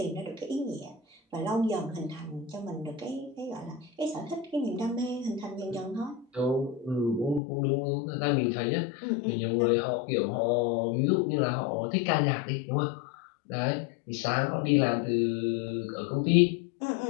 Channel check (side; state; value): right; drops out; at 7.4 s